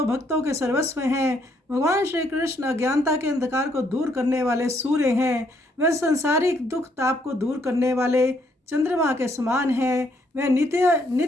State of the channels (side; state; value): both; normal; correlation 0.71